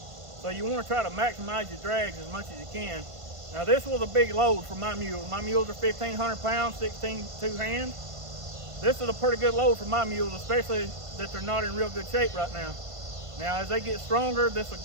So you want to try to maximize your drags as much as you can. Now this was a big load for my mules. My mules are 1,500 pounds, 16 two-hand. This is a pretty good load for my mules, especially that they're not in real good shape right now. Now as they get stronger, this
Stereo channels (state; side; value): late; left; 1.5 ms